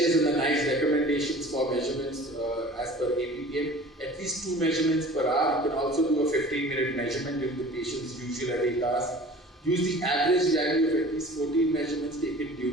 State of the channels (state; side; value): normal; both; correlation 0.44